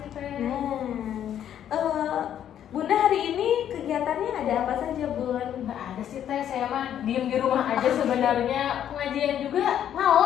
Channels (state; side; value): quieter; right; 10.1 dB